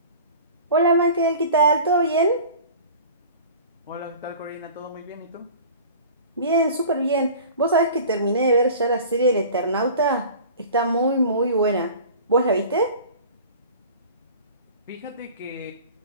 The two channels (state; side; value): inverted; both; correlation -0.41